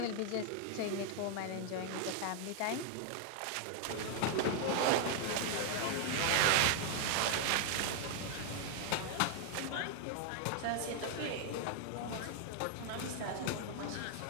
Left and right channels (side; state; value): both; different; correlation 0.00